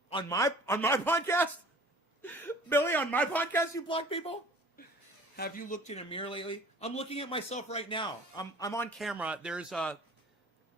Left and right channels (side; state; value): both; normal; correlation 0.48